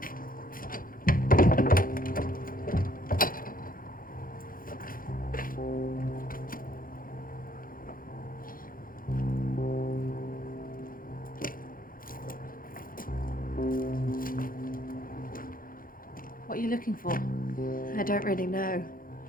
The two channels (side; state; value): right; late; 0.41 ms